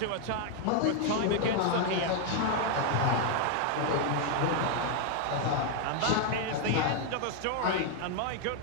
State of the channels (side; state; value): both; different; correlation 0.00